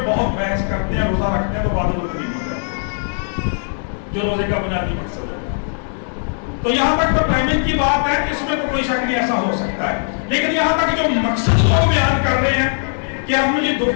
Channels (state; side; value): silent; right; 63 dB below the other